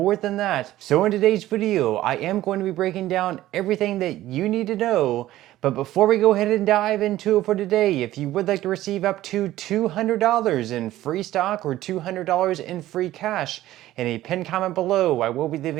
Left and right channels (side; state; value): left; quieter; 14.8 dB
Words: than that. So in today's video, I am going to be breaking down everything that you need to know. But before we go ahead and dive into it for today, if you would like to receive up to $200 in free stock or $200 in free cash, in a pinned comment below, I will be